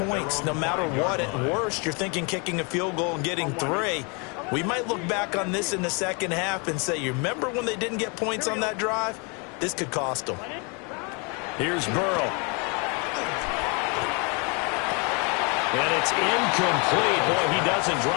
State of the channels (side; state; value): right; quieter; 33.2 dB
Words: no matter what. At worst, you're thinking kicking a field goal and getting 3. We might look back on this in the second half and say, you remember when they didn't get points on that drive? This could cost them. Here's Burrow. And it's incomplete. Boy, he doesn't